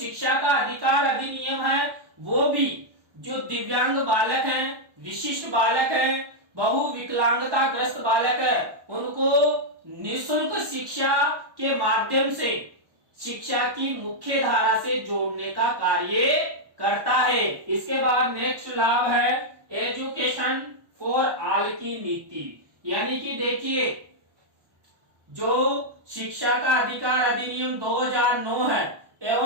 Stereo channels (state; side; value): late; left; 1.2 ms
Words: का अधिकार अधिनियम है वो भी जो दिव्यांग बालक हैं, विशिष्ट बालक हैं, बहुविकलांगता ग्रस्त बालक है, उनको निःशुल्क शिक्षा के माध्यम से शिक्षा की मुख्य धारा से जोड़ने का कार्य करता है। इसके बाद नेक्स्ट लाभ है एजुकेशन फॉर ऑल की नीति, यानी कि देखिए जो शिक्षा का अधिकार अधिनियम 2009 है